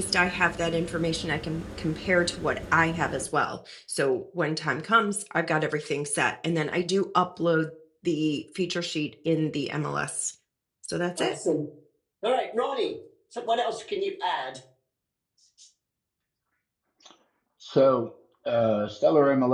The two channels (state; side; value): identical; both; correlation 1.00